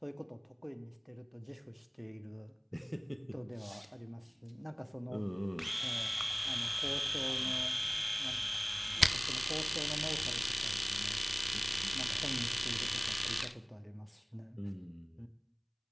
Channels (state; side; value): identical; both; correlation 1.00